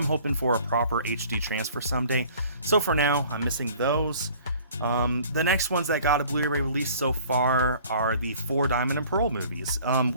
hoping for a proper HD transfer someday. So for now, I'm missing those. The next ones that got a Blu-ray release so far are the 4 Diamond and Pearl movies.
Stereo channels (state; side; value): inverted; both; correlation -0.51